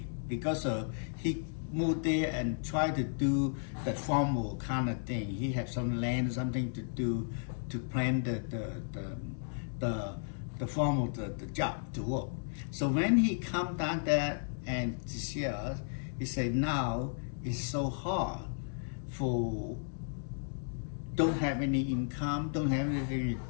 because he moved there and tried to do the formal kind of thing. He had some land, something to do to plan the formal the job to work. So when he come down there and to see us, he said, now it's so hard for don't have any income, don't have anything to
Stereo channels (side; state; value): right; silent; digital silence